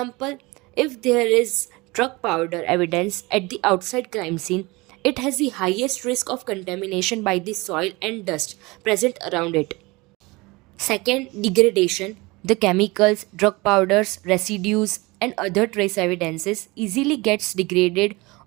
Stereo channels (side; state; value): left; quieter; 23.6 dB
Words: if there is drug powder evidence at the outside crime scene, it has the highest risk of contamination by the soil and dust present around it. Second, degradation. The chemicals, drug powders, residues, and other trace evidences easily gets degraded